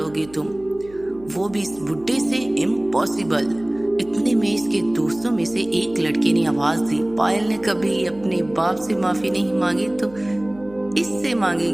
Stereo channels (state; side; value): noise; right; hum, 22 dB below the sound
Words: तुम? वो भी इस बुड्ढे से? इम्पॉसिबल। इतने में इसके दोस्तों में से एक लड़के ने आवाज दी, पायल ने कभी अपने बाप से माफी नहीं मांगी तो इससे